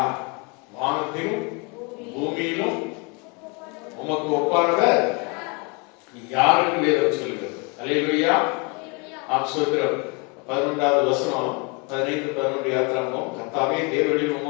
வானத்திலும் பூமியிலும் உமக்கு ஒப்பானவர் யார் என்று வேதம் சொல்கிறது. அல்லேலூயா. 11வது வசனம் 15:11 யாத்திராவும், கர்த்தாவே தேவர்களில்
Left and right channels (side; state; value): right; quieter; 31.7 dB